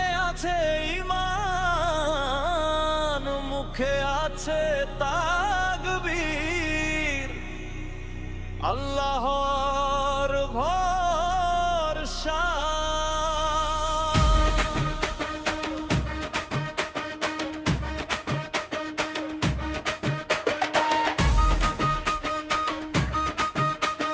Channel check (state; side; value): identical; both; correlation 1.00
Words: আছে ঈমান, মুখে আছে তাকবীর, আল্লাহর ভরসা।